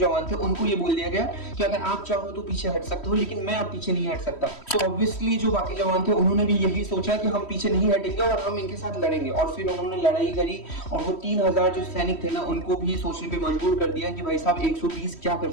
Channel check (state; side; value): late; right; 3.1 ms